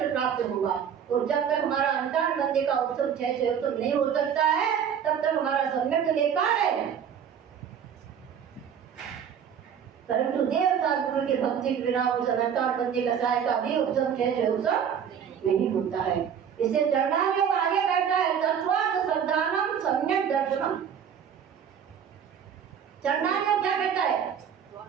प्राप्त होगा। और जब तक हमारा अंतर्बंदी का उपशम 6 उपशम नहीं हो सकता है तब तक हमारा सम्यक बेकार है। परंतु देवता गुरु की भक्ति के बिना उस अंतर्बंदी कसाय का भी उपशम 6 उपशम नहीं होता है। इसे चरणान योग आगे कहता है तत्वार्थ श्रद्धानम सम्यक दर्शनम। चरणान योग क्या कहता है?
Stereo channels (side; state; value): left; quieter; 8.1 dB